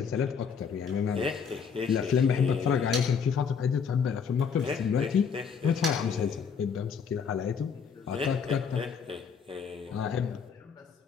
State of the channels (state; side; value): quieter; right; 6.4 dB